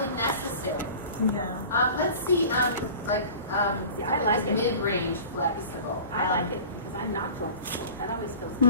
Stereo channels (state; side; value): inverted; both; correlation -0.40